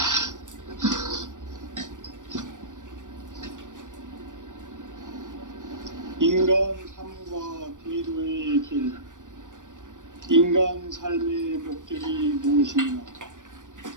인간 삶과 대도의 길. 인간 삶의 목적이 무엇인가?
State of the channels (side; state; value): left; late; 0.87 ms